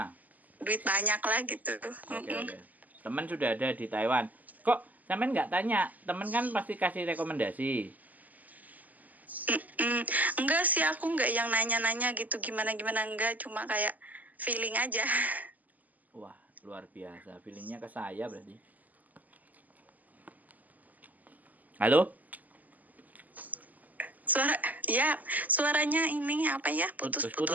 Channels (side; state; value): left; late; 0.080 ms